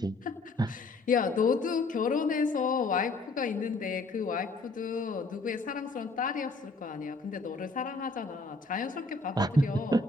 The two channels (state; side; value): quieter; right; 3.4 dB